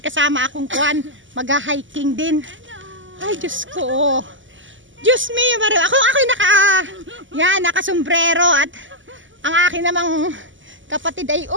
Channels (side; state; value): left; late; 0.55 ms